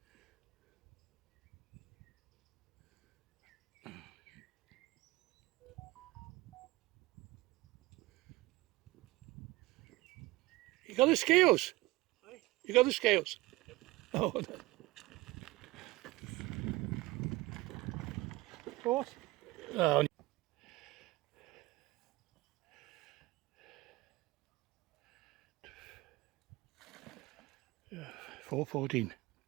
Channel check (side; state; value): left; quieter; 20.1 dB